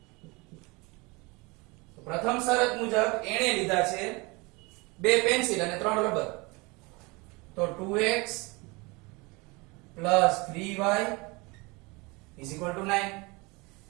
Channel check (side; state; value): left; quieter; 26.2 dB